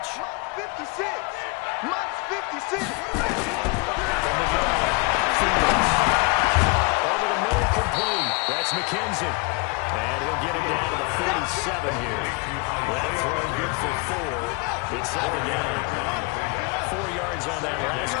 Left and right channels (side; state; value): right; quieter; 29.4 dB